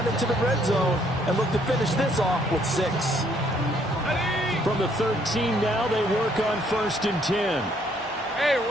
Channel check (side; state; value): both; normal; correlation 0.67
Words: into the red zone and look to finish this off with 6. From the 13 now, they work on 1st and 10. Hey,